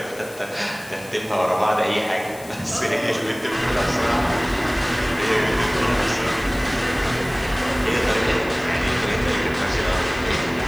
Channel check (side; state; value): left; noise; hiss, 20 dB below the sound